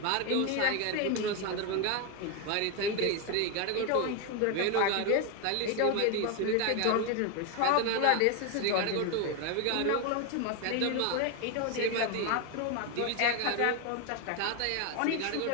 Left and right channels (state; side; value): different; both; correlation 0.01